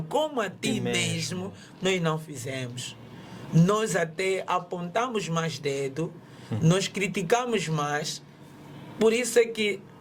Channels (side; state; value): both; identical; correlation 1.00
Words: como a ti mesmo, nós não fizemos. Nós até apontamos mais dedo, nós criticamos mais. Por isso é que